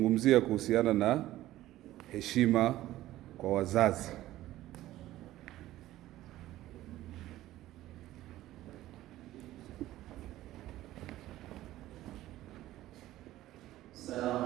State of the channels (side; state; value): left; quieter; 15.1 dB